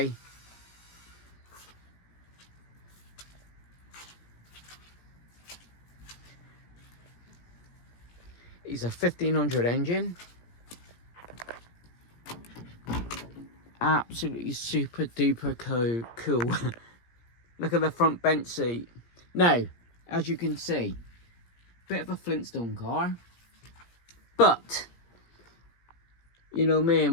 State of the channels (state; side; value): late; right; 17 ms